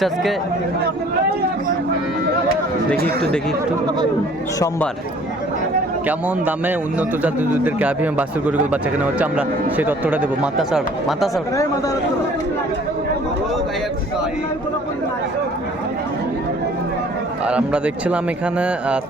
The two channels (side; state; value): both; normal; correlation 0.54